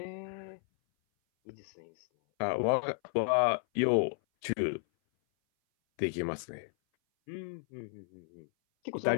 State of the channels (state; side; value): silent; right; 56 dB below the other